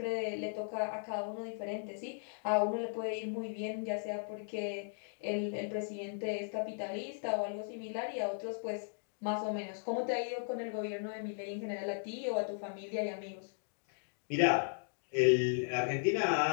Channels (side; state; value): right; silent; digital silence